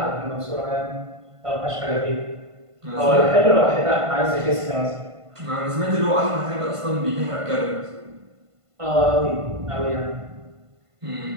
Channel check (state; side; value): late; left; 1.5 ms